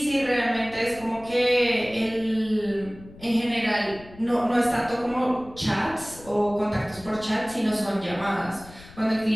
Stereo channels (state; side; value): noise; left; rumble, 20 dB below the sound